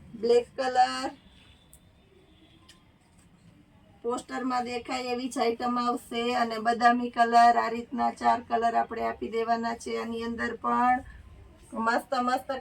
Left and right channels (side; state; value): both; identical; correlation 1.00